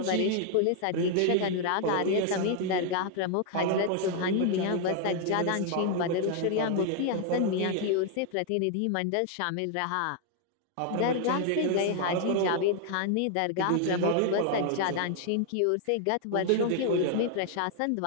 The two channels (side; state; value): both; different; correlation 0.00